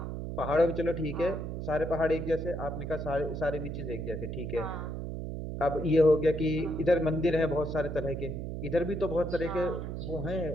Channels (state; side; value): noise; right; hum, 5 dB below the sound